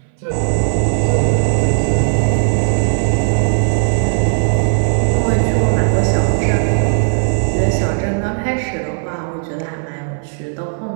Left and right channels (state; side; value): silent; left; 64 dB below the other